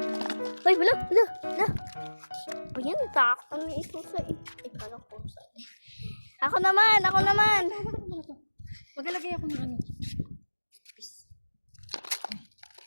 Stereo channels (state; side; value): inverted; both; correlation -1.00